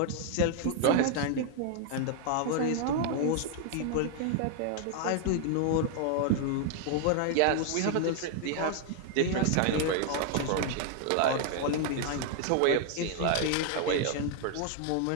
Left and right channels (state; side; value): different; both; correlation 0.00